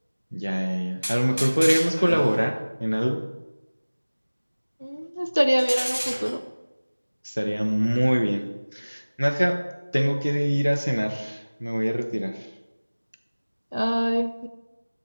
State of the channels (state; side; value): inverted; both; correlation -1.00